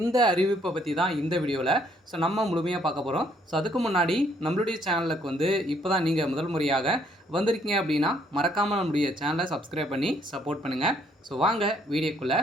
இந்த அறிவிப்பை பற்றி தான் இந்த வீடியோவில் நம்ம முழுமையாக பார்க்க போகிறோம். ஸோ அதுக்கு முன்னாடி நம்மளுடைய சேனலுக்கு இப்போ தான் நீங்கள் முதல் முறையாக வந்திருக்கீங்க அப்படின்னா, மறக்காமல் நம்மளுடைய சேனலை சப்ஸ்கிரைப் பண்ணி சப்போர்ட் பண்ணுங்கள். ஸோ வாங்க வீடியோக்குள்ளே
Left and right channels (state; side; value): normal; both; correlation 0.67